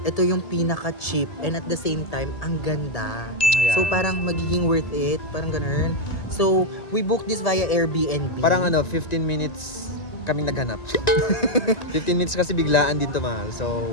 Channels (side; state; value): right; late; 2.0 ms